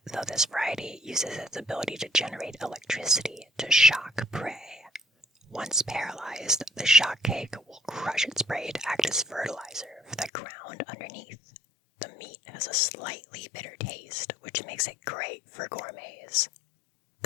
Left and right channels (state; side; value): drops out; right; at 10.3 s